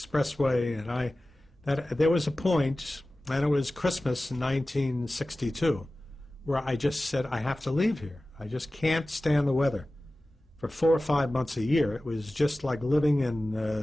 And there was a point, and it was Christmas in 1962, where I just said, I have to leave here. I just can't stand the weather. For 4 or 5 months a year, it was just like living in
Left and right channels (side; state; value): both; normal; correlation 0.96